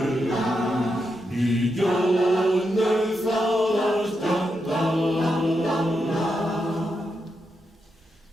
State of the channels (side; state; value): both; normal; correlation 0.84